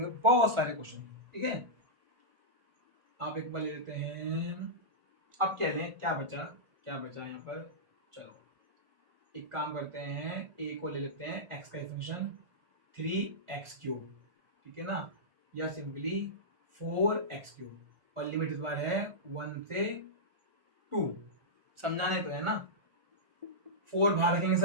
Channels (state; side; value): late; left; 1.4 ms